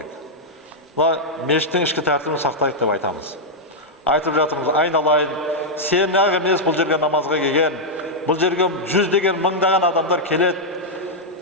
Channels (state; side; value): normal; both; correlation -0.04